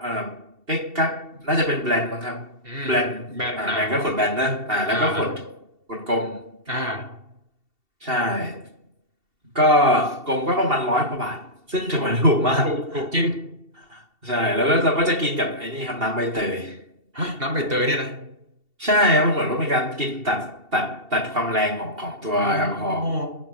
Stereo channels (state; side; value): late; left; 2.7 ms